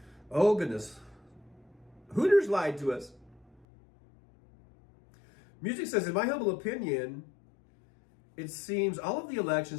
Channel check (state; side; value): drops out; right; at 3.7 s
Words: Oh, goodness. Hooters lied to us. Music says, in my humble opinion, it seems all of the